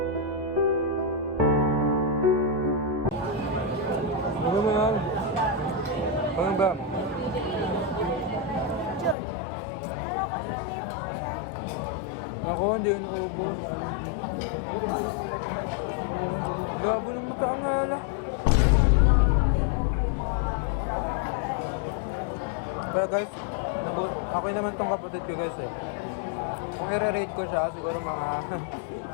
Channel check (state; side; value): drops out; right; at 9.2 s